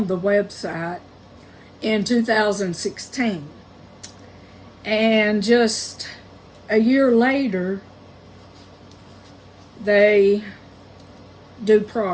the website in 2016. And just a year later, they do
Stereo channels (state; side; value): identical; both; correlation 1.00